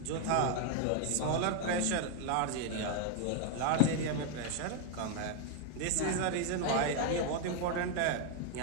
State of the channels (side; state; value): both; different; correlation 0.00